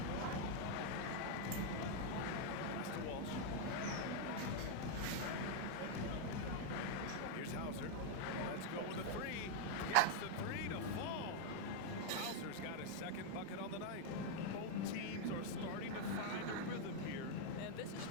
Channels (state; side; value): different; both; correlation 0.00